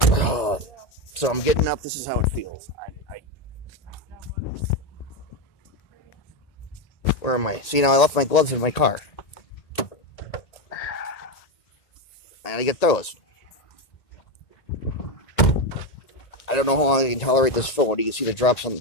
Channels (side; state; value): right; late; 1.8 ms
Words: So I'm getting up. This is how it feels. Where am I? See, now I left my gloves in my car. I gotta get those. I don't know how long I can tolerate this phone. You can see the drops coming